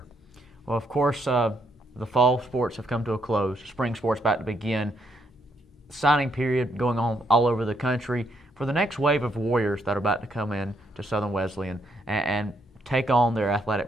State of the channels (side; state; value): both; normal; correlation 0.75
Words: Well, of course, the fall sports have come to a close. Spring sports about to begin. Signing period going on all over the country for the next wave of Warriors that are about to come in to Southern Wesleyan and take on their